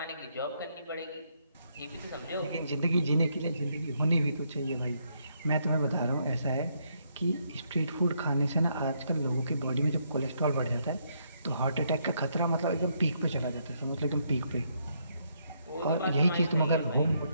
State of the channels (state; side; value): inverted; both; correlation -0.74